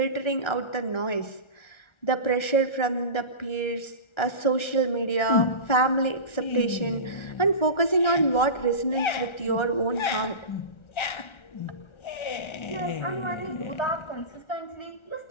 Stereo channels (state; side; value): late; right; 1.3 ms